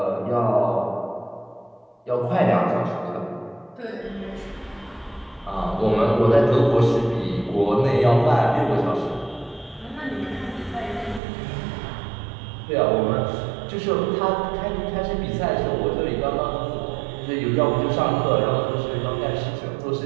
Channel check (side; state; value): left; drops out; at 11.2 s